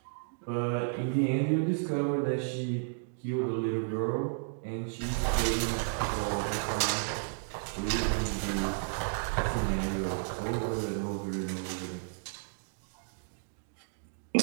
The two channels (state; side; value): silent; left; digital silence